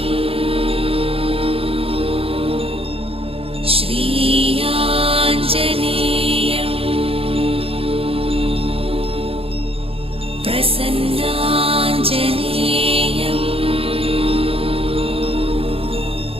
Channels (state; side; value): late; left; 0.27 ms